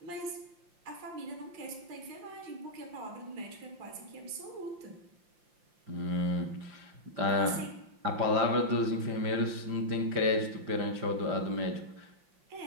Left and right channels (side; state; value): left; late; 5.7 ms